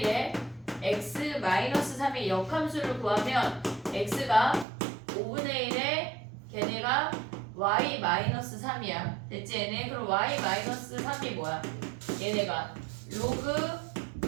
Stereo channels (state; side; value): drops out; left; at 4.7 s